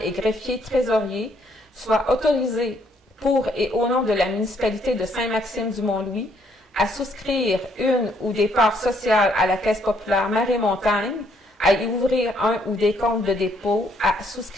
et greffier trésorier, soient autorisés pour et au nom de la municipalité de Saint-Maxime-du-Mont-Louis à souscrire une ou des parts sociales à la Caisse populaire Marée-Montagne, à y ouvrir un ou des comptes de dépôt, à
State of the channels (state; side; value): normal; both; correlation 0.69